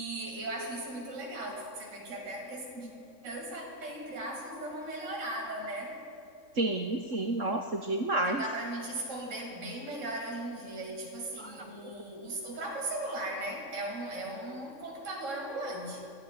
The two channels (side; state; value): left; late; 3.7 ms